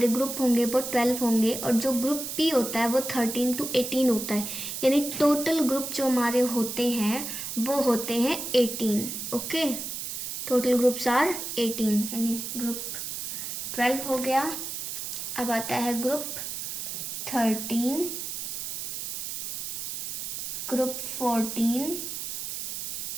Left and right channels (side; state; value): right; noise; hiss, 5 dB below the sound